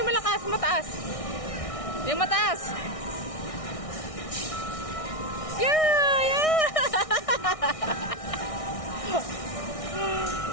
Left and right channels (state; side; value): late; right; 1.6 ms